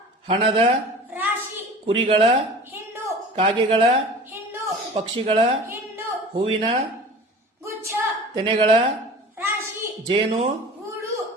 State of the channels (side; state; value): both; normal; correlation 0.39